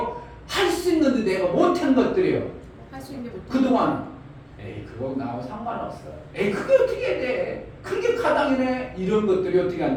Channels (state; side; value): identical; both; correlation 1.00